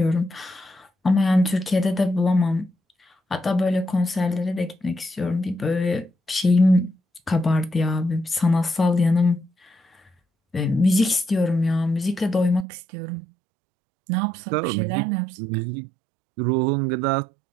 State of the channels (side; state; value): left; drops out; at 12.7 s